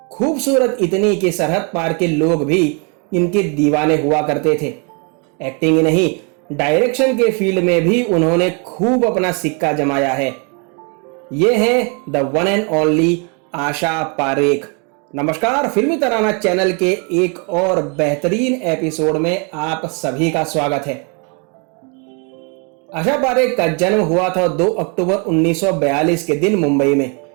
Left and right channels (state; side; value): quieter; left; 35.3 dB